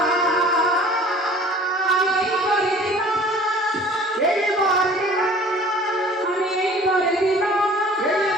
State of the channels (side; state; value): both; normal; correlation 0.48